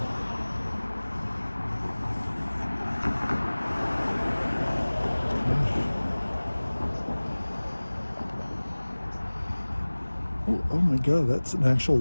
Oh my God, that's an actual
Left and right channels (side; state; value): both; inverted; correlation -1.00